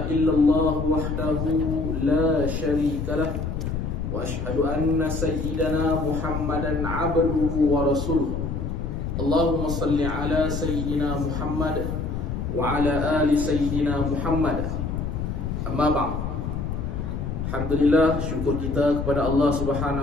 illallah wahdahu la syarika lah wa asyhadu anna sayyidana Muhammadan abduhu wa rasuluh. Allahumma salli ala sayyidina Muhammad wa ala ali sayyidina Muhammad. Amma ba'd. Alhamdulillah, syukur kita kepada Allah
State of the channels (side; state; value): left; noise; rumble, 3 dB below the sound